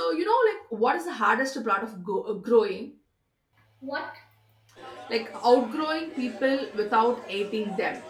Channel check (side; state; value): both; identical; correlation 1.00